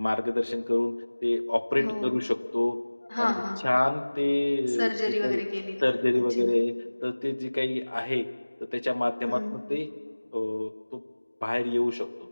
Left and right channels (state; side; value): inverted; both; correlation -1.00